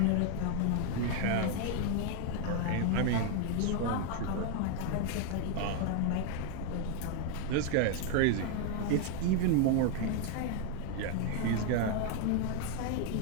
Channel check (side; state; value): both; different; correlation 0.01